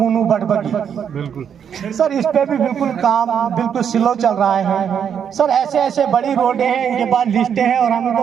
बटबगी, बिल्कुल सर इस पे भी बिल्कुल काम बिल्कुल स्लो चल रहा है। सर ऐसे बड़ी रोडें हैं, इनके पास लिस्टें हैं और हम इनको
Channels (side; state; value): left; quieter; 8.0 dB